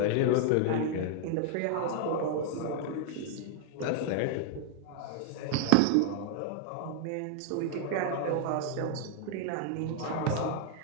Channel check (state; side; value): different; both; correlation 0.00